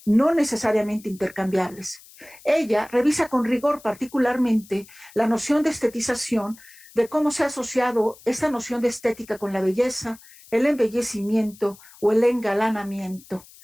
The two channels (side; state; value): left; noise; hiss, 23 dB below the sound